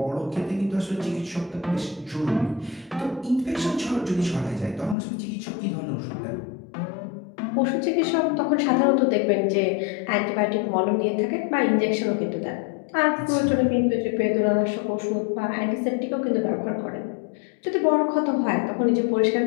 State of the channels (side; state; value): right; drops out; at 5.0 s